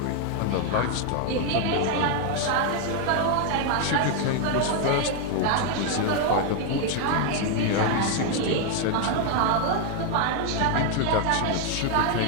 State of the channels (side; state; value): both; different; correlation 0.01